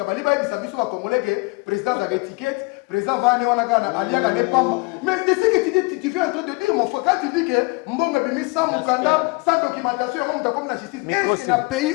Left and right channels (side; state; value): right; quieter; 27.2 dB